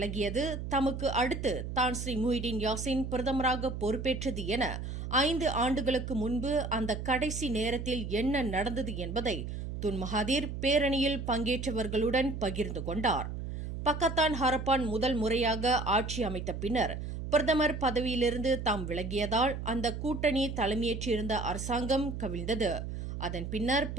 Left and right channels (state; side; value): noise; right; hum, 6 dB below the sound